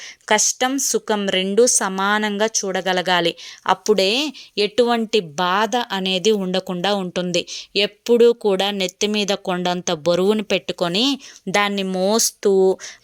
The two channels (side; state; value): both; identical; correlation 1.00